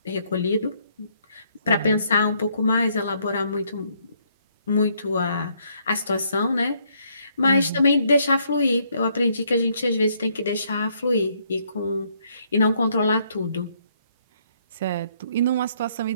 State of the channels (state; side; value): inverted; both; correlation -0.70